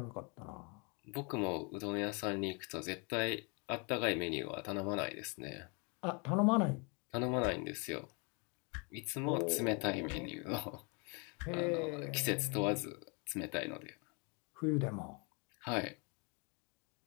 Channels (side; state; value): right; quieter; 33.0 dB